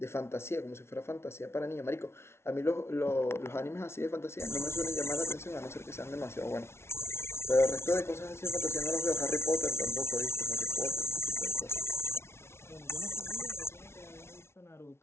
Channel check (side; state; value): right; late; 0.12 ms